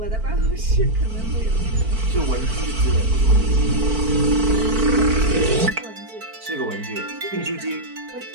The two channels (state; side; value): late; left; 4.5 ms